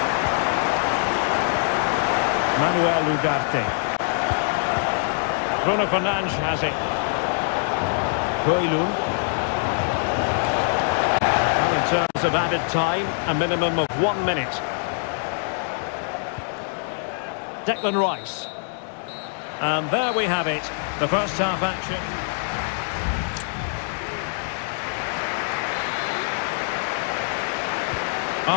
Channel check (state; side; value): silent; right; digital silence